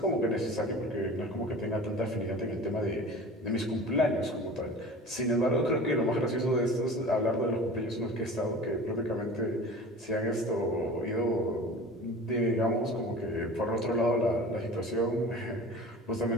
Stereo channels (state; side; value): normal; both; correlation 0.38